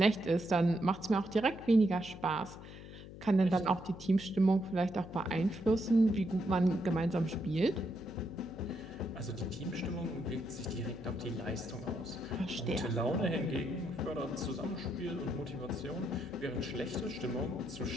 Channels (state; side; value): noise; left; hum, 14 dB below the sound